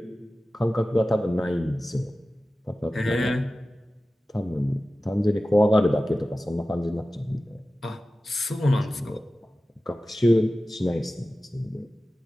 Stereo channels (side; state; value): both; normal; correlation 0.95